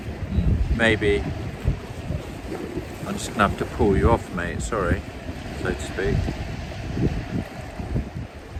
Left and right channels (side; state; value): both; identical; correlation 1.00